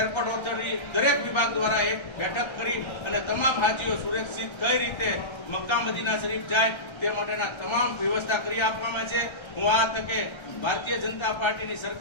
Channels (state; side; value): late; right; 1.3 ms